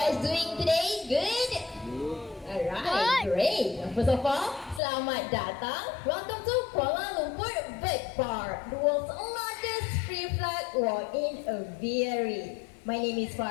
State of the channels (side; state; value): right; drops out; at 4.8 s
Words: doing today? Good? Alright, great. First of all, selamat datang. Welcome to Kuala Lumpur Bird Park, the world's largest free flight walk-in aviary. My name is